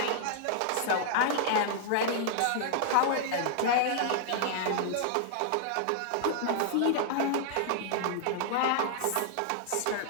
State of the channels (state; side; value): different; both; correlation -0.01